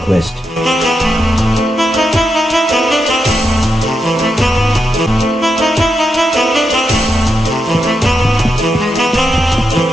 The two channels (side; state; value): both; normal; correlation 0.85